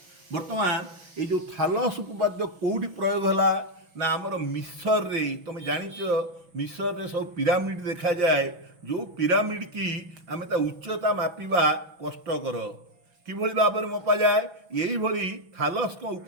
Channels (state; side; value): late; left; 6.1 ms